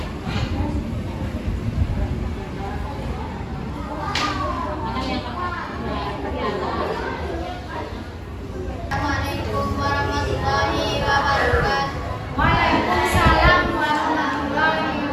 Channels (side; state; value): both; identical; correlation 1.00